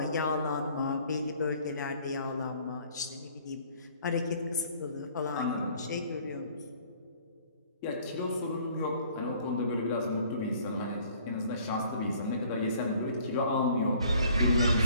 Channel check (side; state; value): both; inverted; correlation -0.57